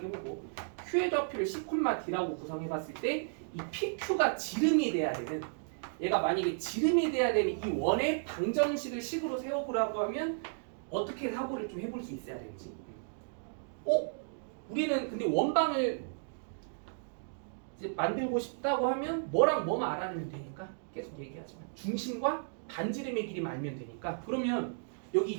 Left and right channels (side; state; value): left; silent; digital silence